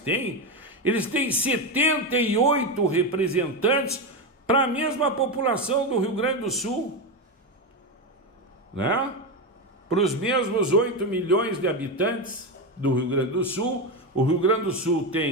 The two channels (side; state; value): both; normal; correlation 0.13